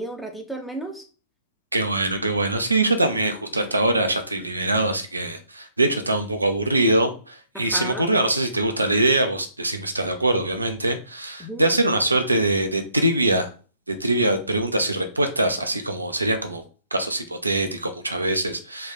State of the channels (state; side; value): inverted; both; correlation -0.70